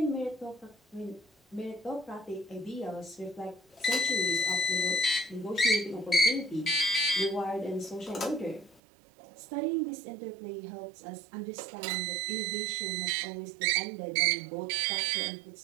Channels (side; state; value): left; drops out; at 8.8 s